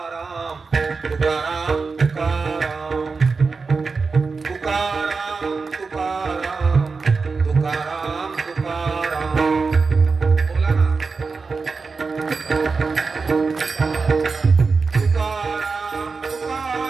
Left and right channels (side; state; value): left; quieter; 4.6 dB